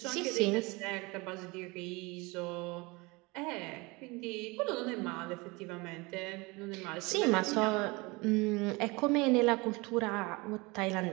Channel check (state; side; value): quieter; left; 25.2 dB